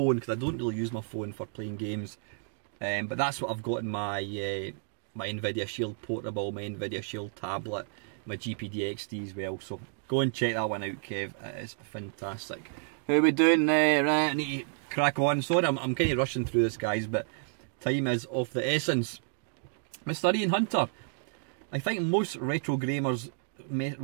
because I don't really use my phone for playing games, but that's what I've got in my my Nvidia Shield Portable, my Nvidia Shield tablet, my GPD XD as well. So go and check that one out, Kev. It is fantastic. How are we doing? Right, I need to crack on. Sorry, I'm kind of rushing through this, guys, but time is of the essence. Mr. Ian Hunter, I think most retro gamers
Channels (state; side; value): silent; left; digital silence